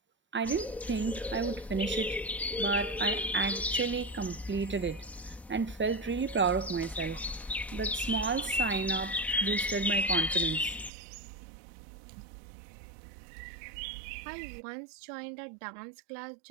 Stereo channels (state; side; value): drops out; left; at 10.9 s